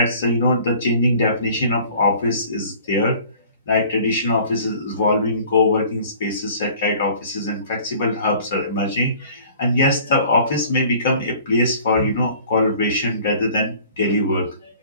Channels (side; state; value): both; inverted; correlation -0.50